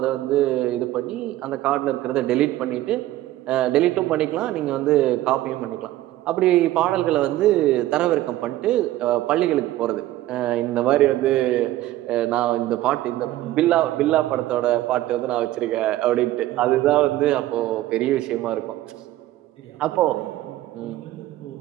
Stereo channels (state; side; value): quieter; left; 15.1 dB